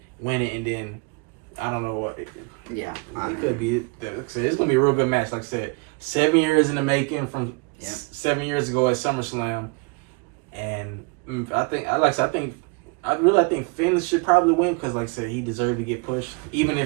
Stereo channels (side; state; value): left; quieter; 30.5 dB